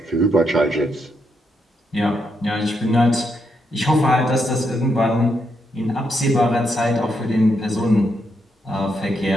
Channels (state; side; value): normal; both; correlation 0.80